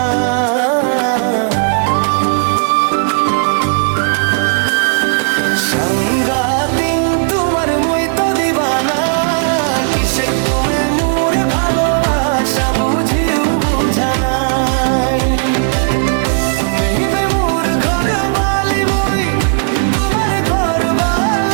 সাংগাতিন তোমার মুই তো দিবানা। কিসে তুমি মোর ভালোবাসা বুঝিও বুঝানাই। তুমি বে মোর ঘর বালি মুই তোমার ঘর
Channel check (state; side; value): silent; left; digital silence